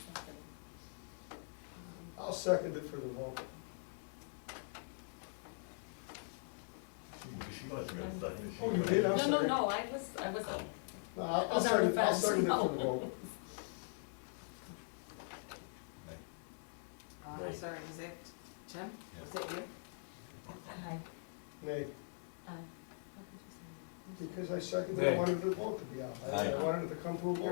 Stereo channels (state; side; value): silent; right; digital silence